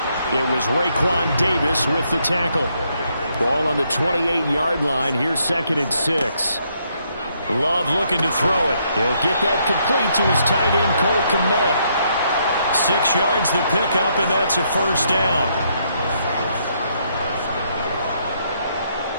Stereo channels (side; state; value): both; inverted; correlation -0.74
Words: It was Raekwon Davis with the tackle. Ball on the 28-yard line. Here's 2nd and 6. Love looking to throw it. He'll get that complete to his tight end, Cole Kmet. 6 yards the pickup, and that's a first down.